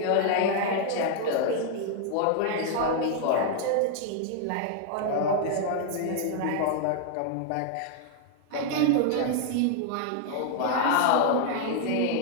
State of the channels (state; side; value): different; both; correlation 0.00